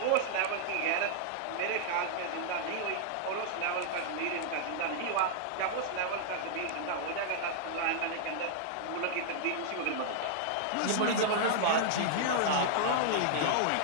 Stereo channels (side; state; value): both; different; correlation -0.01